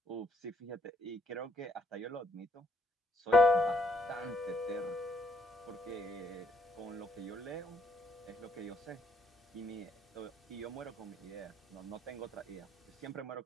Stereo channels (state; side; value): normal; both; correlation 0.70